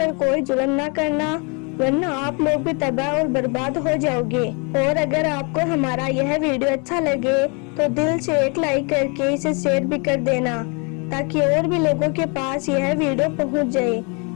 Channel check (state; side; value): quieter; right; 33.8 dB